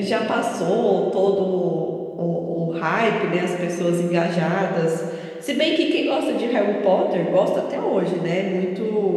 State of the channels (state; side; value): identical; both; correlation 1.00